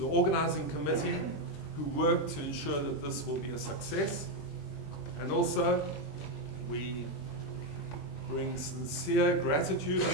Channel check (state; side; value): late; right; 20 ms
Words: organizing committee who worked to ensure that this will be a success. And also, we bring sincere gratitude and